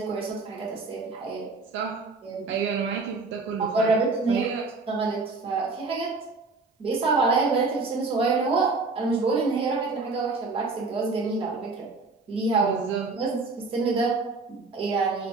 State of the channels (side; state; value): left; quieter; 3.8 dB